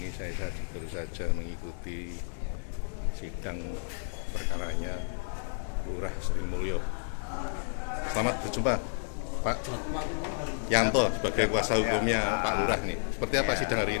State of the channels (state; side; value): silent; right; digital silence